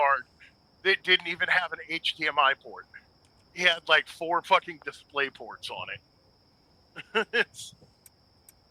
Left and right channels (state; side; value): identical; both; correlation 1.00